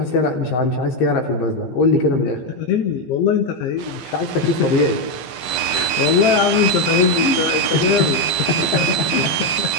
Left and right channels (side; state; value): right; late; 15 ms